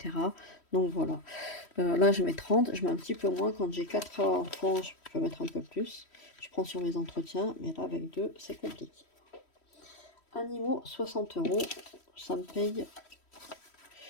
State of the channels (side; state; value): right; late; 3.1 ms